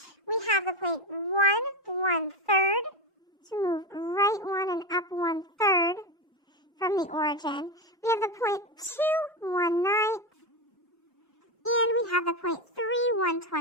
We have the point 1, 1/3. So move right 1 and up 1/3 from the origin. We have the point 2, 1/9. And we have the point 3,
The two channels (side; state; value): both; normal; correlation 0.14